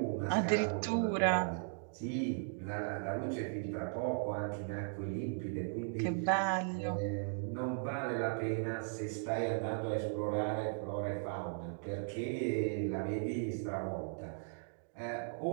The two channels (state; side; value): silent; left; digital silence